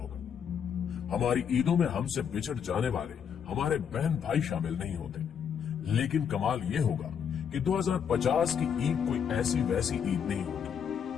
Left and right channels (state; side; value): quieter; right; 7.7 dB